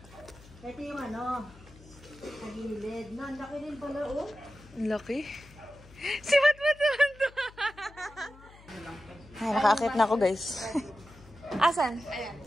Ito yung ano, kagilid. No, ang laki din pala, oh. Ang laki. Si Matmat naman to. Ay, nakakit na ako, guys. Asan? Ayan.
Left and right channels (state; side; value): noise; left; hum, 22 dB below the sound